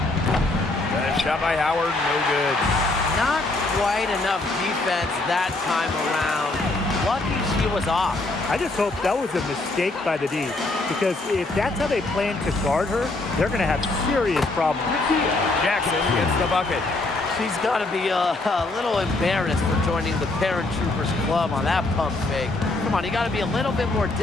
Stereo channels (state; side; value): quieter; right; 3.0 dB